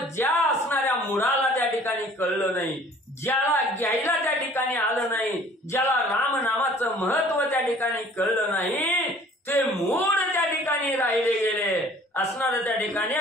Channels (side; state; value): both; normal; correlation 0.52